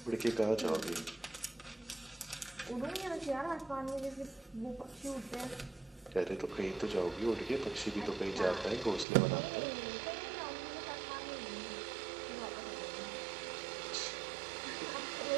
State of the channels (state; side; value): drops out; left; at 9.1 s